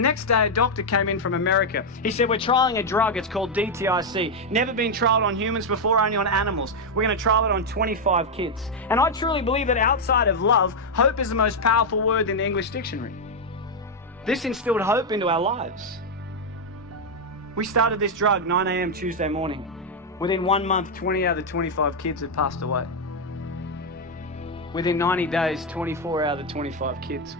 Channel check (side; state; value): both; normal; correlation 0.01